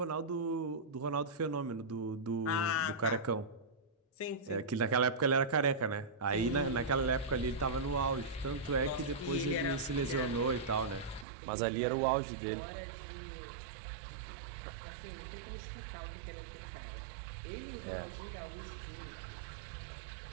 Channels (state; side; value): drops out; left; at 11.2 s